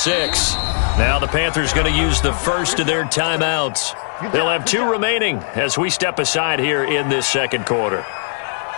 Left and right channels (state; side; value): silent; right; digital silence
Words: Now the Panthers going to use the first of their timeouts. They'll have 2 remaining as we step aside here in this second quarter.